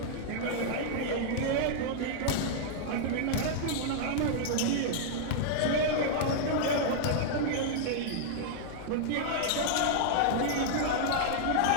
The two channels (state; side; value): different; both; correlation -0.01